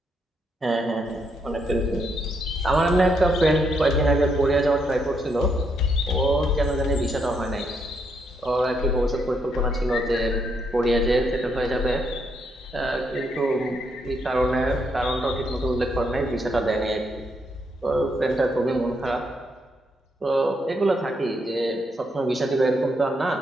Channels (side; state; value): both; normal; correlation 0.77